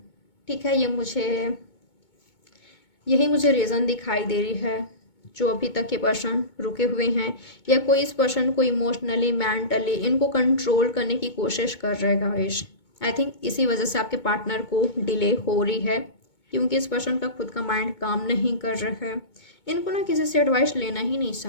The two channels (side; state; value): right; late; 2.2 ms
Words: ठीक है, यही मुझे रीज़न दिखाई दे रही है जो अभी तक ये पर्सन रुके हुए हैं, या कोई इस पर्सन को इमोशनली मेंटली इनको कंट्रोल करने की कोशिश कर रहे हैं गाइस। आई थिंक इसी वजह से आपके पार्टनर को डिले हो रही है, क्योंकि इस पर्सन का खुद का माइंड काम नहीं कर रहा है। इनको ना किसी से एडवाइस लेना ही नहीं